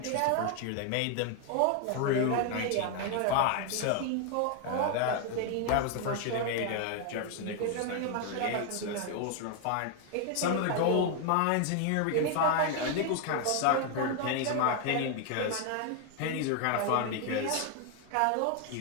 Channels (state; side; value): different; both; correlation 0.01